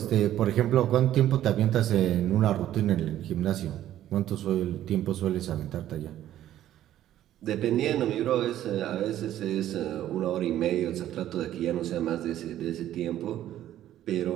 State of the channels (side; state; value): left; quieter; 12.4 dB